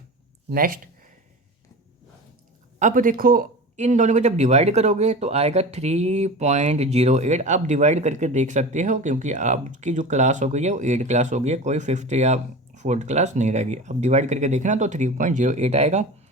नेक्स्ट, अब देखो इन दोनों को जब डिवाइड करोगे तो आएगा 3.08। अब डिवाइड करके देख सकते हो, क्योंकि आपकी जो क्लास हो गई है वो 8 क्लास हो गई है, कोई 5th या 4th क्लास नहीं रहेगी। अब डिवाइड करके देखना तो 3.08 आएगा,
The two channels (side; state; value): both; normal; correlation 0.32